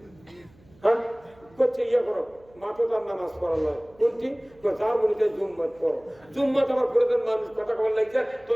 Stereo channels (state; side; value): noise; right; hum, 28 dB below the sound